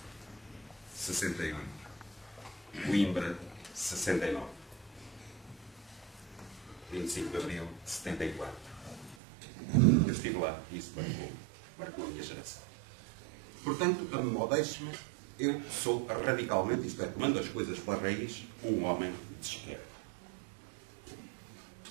68. Coimbra, 69. 25 de abril de 74. Eu estive lá e isso marcou a minha geração. Portanto, a modéstia, eu sou radicalmente, isto é, tomando as coisas pela raiz, um homem de esquerda.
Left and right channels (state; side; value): drops out; left; at 9.2 s